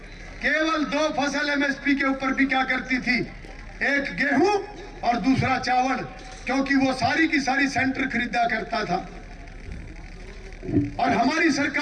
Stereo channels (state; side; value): identical; both; correlation 1.00